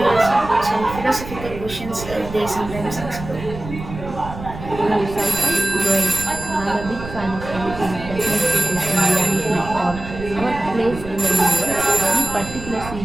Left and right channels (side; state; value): right; noise; rumble, 11 dB below the sound